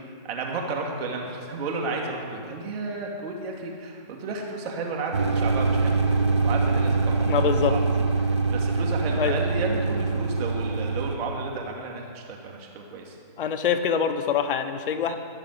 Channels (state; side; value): inverted; both; correlation -0.50